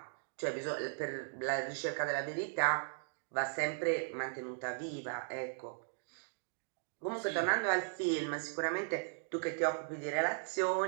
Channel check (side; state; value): left; silent; digital silence